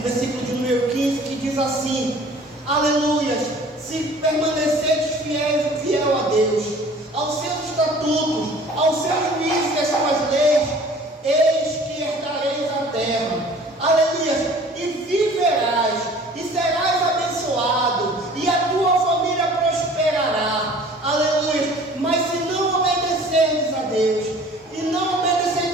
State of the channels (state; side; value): normal; both; correlation 0.48